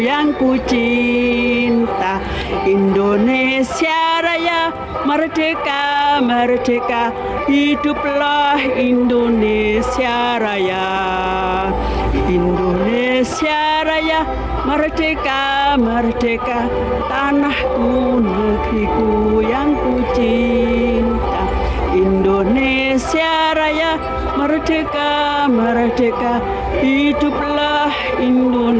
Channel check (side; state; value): both; identical; correlation 1.00